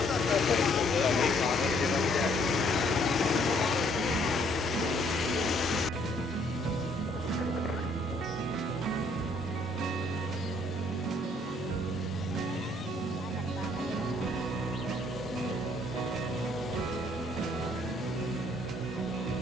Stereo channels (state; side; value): normal; both; correlation 0.65